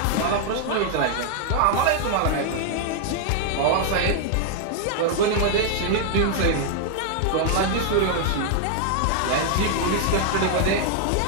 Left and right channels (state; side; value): different; both; correlation 0.00